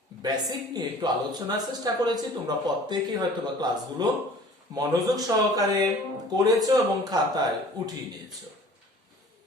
বেসিক নিয়ে একটু আলোচনার চেষ্টা করেছি। তোমরা প্রত্যেকেই হয়তো বা ক্লাসগুলো মনোযোগ সহকারে করেছো এবং খাতায় উঠিয়ে নিয়েছো।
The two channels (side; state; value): both; normal; correlation 0.48